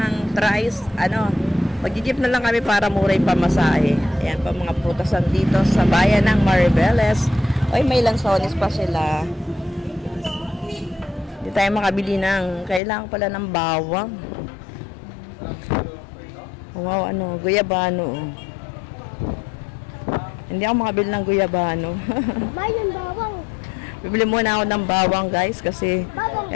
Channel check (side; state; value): right; drops out; at 12.8 s